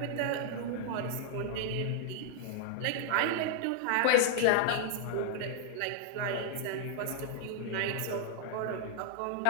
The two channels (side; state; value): both; different; correlation -0.01